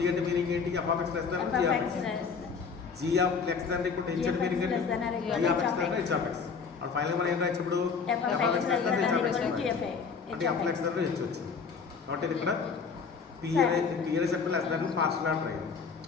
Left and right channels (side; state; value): right; quieter; 5.6 dB